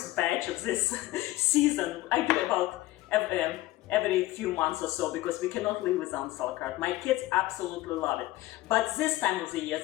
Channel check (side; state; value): right; quieter; 17.1 dB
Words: batch of this season. I do about every few months or so because we cannot live without sauerkraut. My kids absolutely love it. But this time of the year,